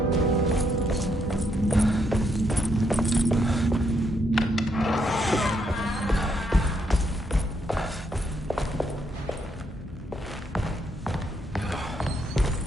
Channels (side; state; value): both; normal; correlation 0.76